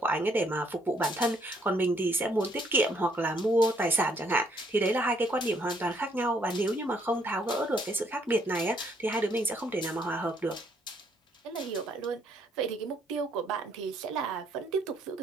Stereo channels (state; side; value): normal; both; correlation 0.69